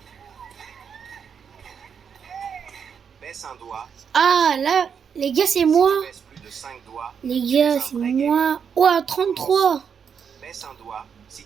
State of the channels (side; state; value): left; quieter; 7.0 dB